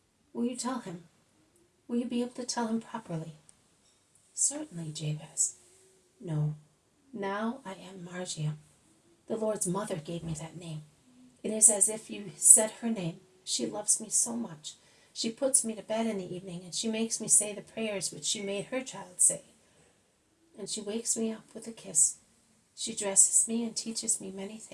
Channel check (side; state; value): both; identical; correlation 1.00